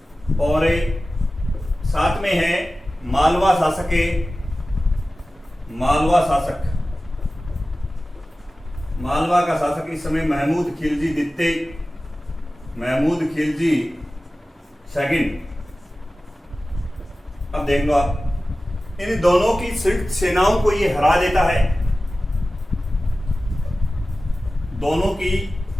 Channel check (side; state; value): both; normal; correlation 0.96